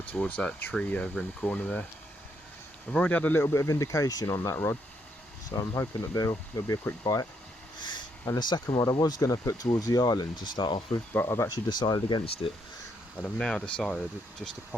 towards that tree over in the corner there. I've already had a little bit of indication on that rod, so I'm hoping that there'll be a quick bite. And the second rod I was going to put towards the island to start off with, but I've actually decided against it. And I've now decided just to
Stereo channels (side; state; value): both; normal; correlation 0.75